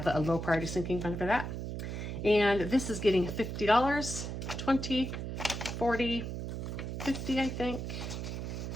a low priority sinking fund for that. And this is getting $50, 20, 40, 50, I think.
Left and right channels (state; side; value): noise; right; hum, 5 dB below the sound